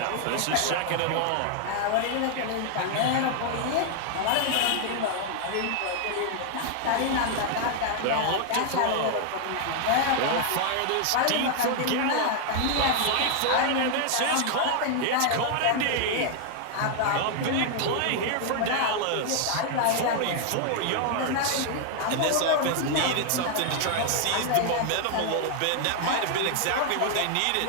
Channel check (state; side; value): different; both; correlation 0.00